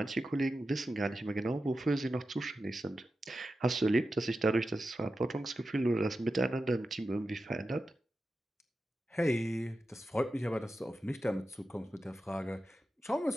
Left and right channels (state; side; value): normal; both; correlation 0.91